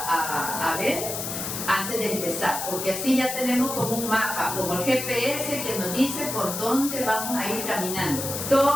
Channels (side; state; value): left; noise; hiss, 5 dB below the sound